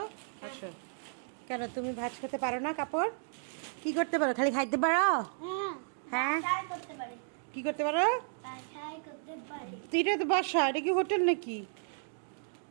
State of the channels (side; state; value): left; silent; digital silence